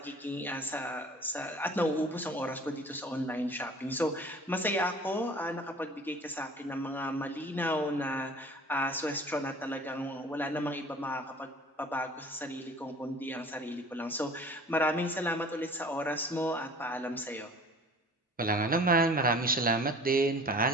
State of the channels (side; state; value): both; normal; correlation 0.45